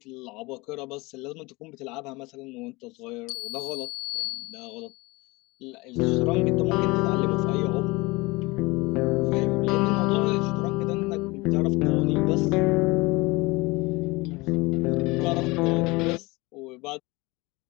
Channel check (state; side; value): quieter; right; 23.6 dB